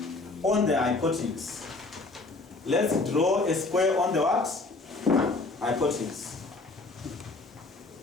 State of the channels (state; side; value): quieter; right; 3.4 dB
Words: on the hypotenuse, let's draw a square on the what? Hypotenuse.